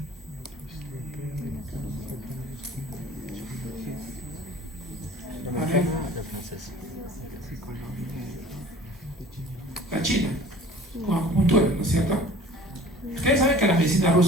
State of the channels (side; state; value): both; normal; correlation 0.46